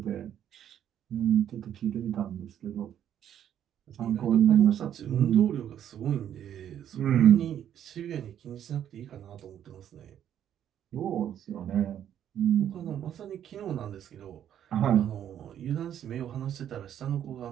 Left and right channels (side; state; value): left; quieter; 10.1 dB